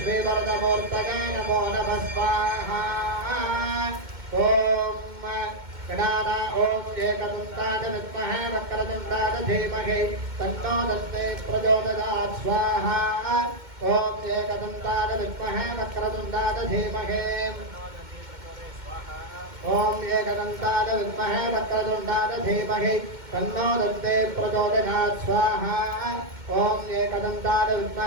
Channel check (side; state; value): left; late; 2.1 ms